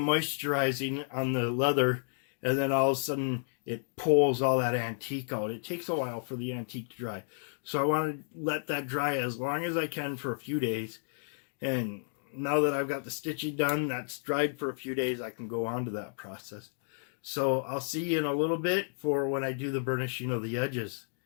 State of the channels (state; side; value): silent; right; digital silence